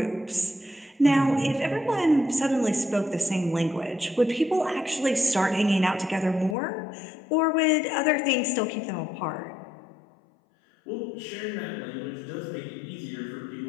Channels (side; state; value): right; drops out; at 6.6 s